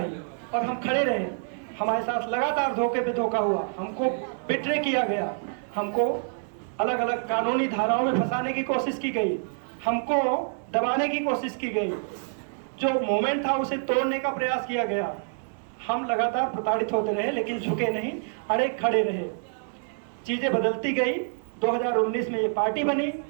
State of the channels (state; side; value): silent; left; digital silence